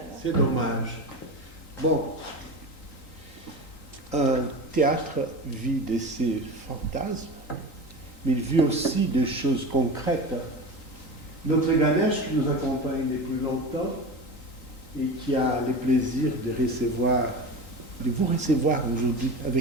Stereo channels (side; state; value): right; late; 3.8 ms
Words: C'est dommage. Bon, un théâtre vit de ses fantasmes, mais il vit aussi des choses concrètes. Notre Ganesh qui nous accompagne depuis longtemps et qui a le plaisir de vous recevoir aujourd'hui